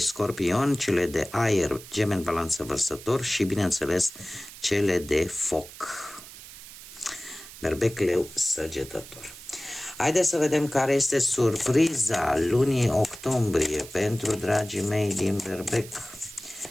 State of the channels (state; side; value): noise; right; hiss, 16 dB below the sound